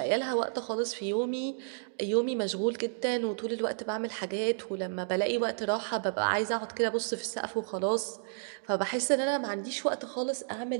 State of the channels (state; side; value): silent; left; digital silence